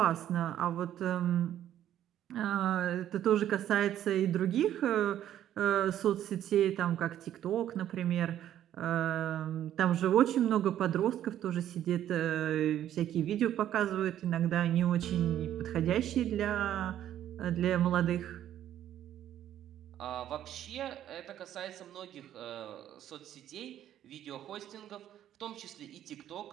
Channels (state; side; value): quieter; left; 11.4 dB